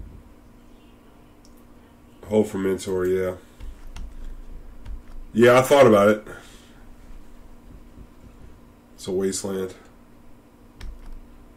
Hope for Mentor, yeah. Yeah, I thought about it. It's a wasteland.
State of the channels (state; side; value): identical; both; correlation 1.00